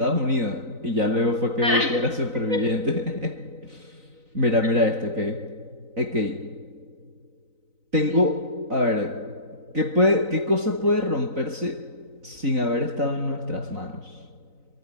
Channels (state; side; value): late; left; 3.9 ms